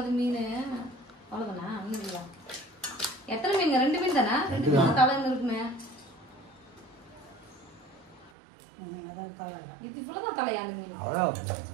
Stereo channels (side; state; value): left; drops out; at 8.3 s